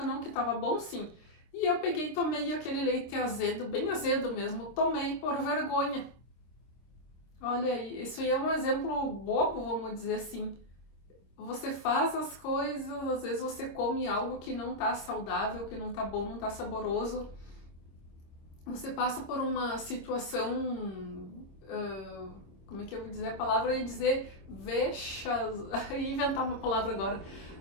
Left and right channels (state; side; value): late; right; 26 ms